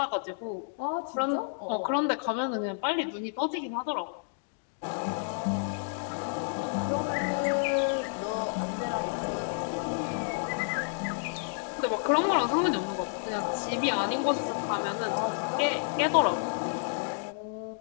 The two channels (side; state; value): right; silent; digital silence